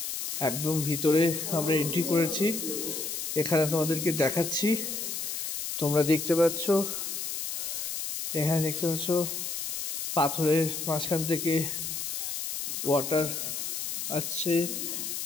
একদম ভিতরে আমরা এন্ট্রি করেছি। এখানে তোমাদেরকে দেখাচ্ছি, তোমরা দেখতে পাচ্ছ, এখানে দেখতে পাচ্ছ পাথরের মাঝখান থেকে ওয়াটার আসছে,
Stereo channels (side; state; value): left; noise; hiss, 3 dB below the sound